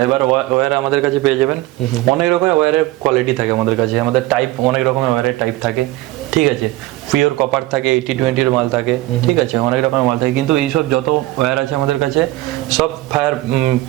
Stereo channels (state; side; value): quieter; left; 17.7 dB